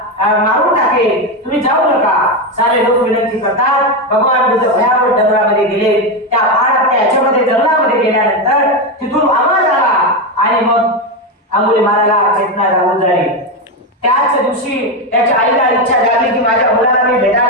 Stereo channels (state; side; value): normal; both; correlation 0.11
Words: मारून टाकेल, तुम्ही जाऊ नका. सारे लोक विनंती करतात. भगवान बुद्ध भयावह जंगलामध्ये गेले. त्या पहाडाच्या याच्यामध्ये जंगलामध्ये गेल्यानंतर तिथून आवाज आला आणि मग अंगुलीमालाला चेतना लागून झाली. त्याच दिवशी त्याच्या आईला इच्छा झाली की माझ्या मुलाला मी